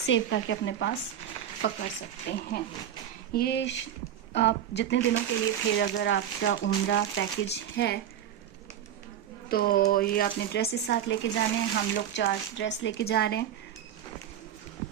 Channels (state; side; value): quieter; left; 10.1 dB